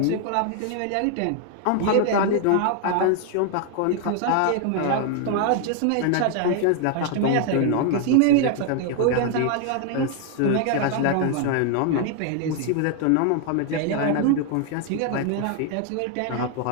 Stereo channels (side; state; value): both; different; correlation 0.00